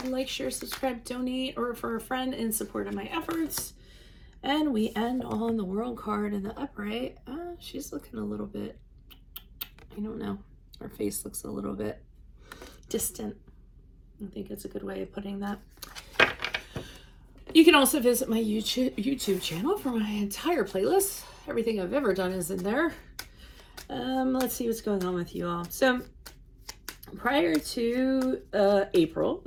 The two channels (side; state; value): both; identical; correlation 1.00